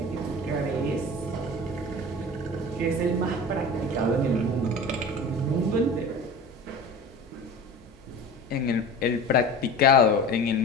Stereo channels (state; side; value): normal; both; correlation 0.35